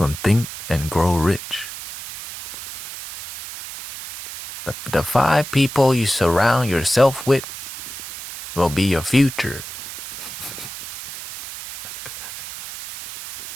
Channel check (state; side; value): noise; right; hiss, 11 dB below the sound